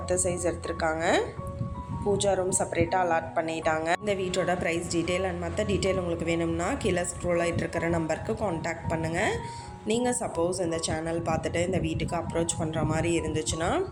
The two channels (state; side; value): identical; both; correlation 1.00